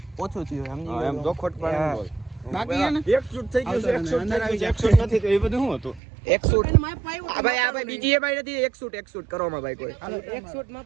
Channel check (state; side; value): drops out; left; at 6.0 s